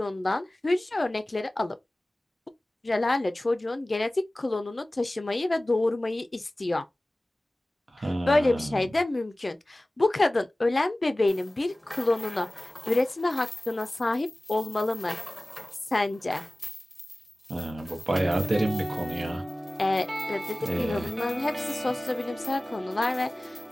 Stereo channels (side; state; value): both; normal; correlation 0.98